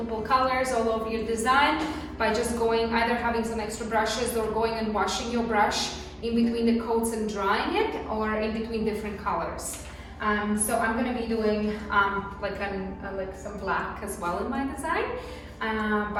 colors all over your design by just going either having some extra brushes or going and washing your brush in between the coats and drying it, or in between different colors. So I'm going to be doing like some black as well in my design.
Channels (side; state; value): both; identical; correlation 1.00